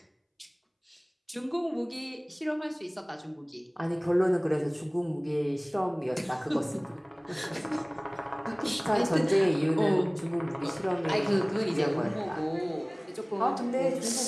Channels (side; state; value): both; identical; correlation 1.00